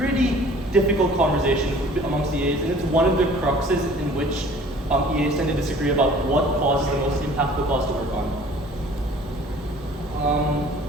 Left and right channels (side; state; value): both; normal; correlation 0.50